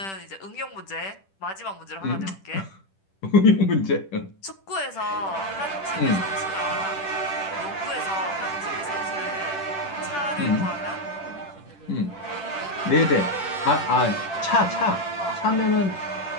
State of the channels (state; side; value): late; right; 10 ms